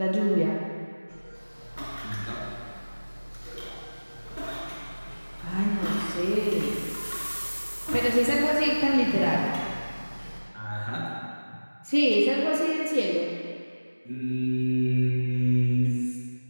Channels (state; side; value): inverted; both; correlation -1.00